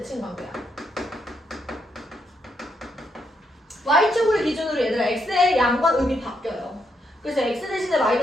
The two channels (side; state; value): both; normal; correlation 0.78